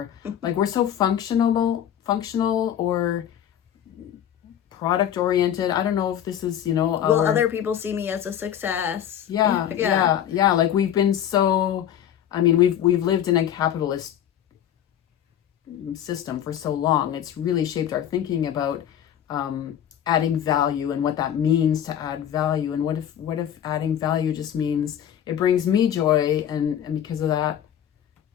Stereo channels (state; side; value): quieter; right; 10.1 dB